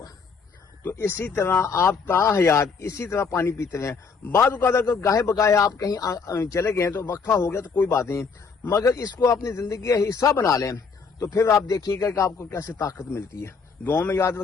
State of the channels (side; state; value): right; quieter; 5.3 dB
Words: تو اسی طرح آپ تا حیات اسی طرح پانی پیتے ہیں۔ بعض اوقات اگر گاہے بگاہے آپ کہیں چلے گئے تو وقفہ ہو گیا تو کوئی بات نہیں، مگر اس کو اپنی زندگی کا حصہ بنا لیں تو پھر آپ دیکھیے گا کہ آپ کو کیسے طاقت ملتی ہے۔ دعاؤں میں یاد